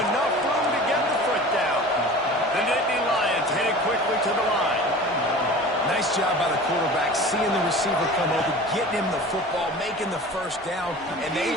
enough room to get the foot down. The Nittany Lions headed quickly to the line. Nice job by the quarterback, seeing the receiver come over, getting him the football, making the first down, and they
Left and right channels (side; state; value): both; normal; correlation 0.39